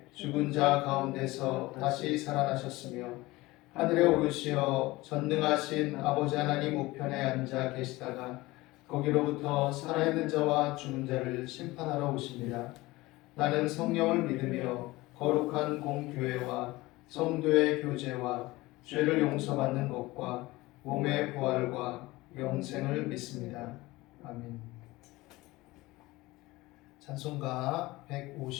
죽은 자 가운데서 다시 살아나셨으며 하늘에 오르시어 전능하신 아버지 하나님 우편에 앉아 계시다가 거기로부터 살아있는 자와 죽은 자를 심판하러 오십니다. 나는 성령을 믿으며 거룩한 공교회와 성도의 교제와 죄를 용서받는 것과 몸의 부활과 영생을 믿습니다. 아멘. 찬송가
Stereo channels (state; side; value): quieter; right; 20.1 dB